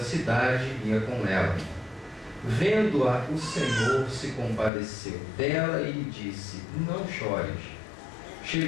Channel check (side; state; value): right; drops out; at 4.7 s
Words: ia com ela. Vendo-a, o Senhor se compadeceu dela e lhe disse: não chores.